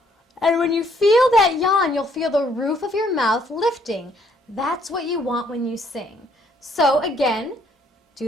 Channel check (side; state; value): both; normal; correlation 0.67